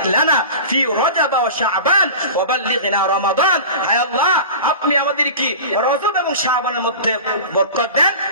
লানা ফি রজব ওয়া শাবান ওয়া বাল্লিগনা রমাদান। হে আল্লাহ, আপনি আমাদের কি রজব এবং শাবানের মধ্যে বরকত দেন,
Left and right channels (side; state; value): both; inverted; correlation -0.34